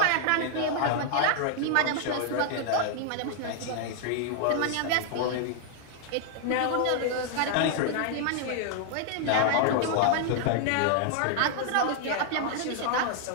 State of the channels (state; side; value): different; both; correlation 0.00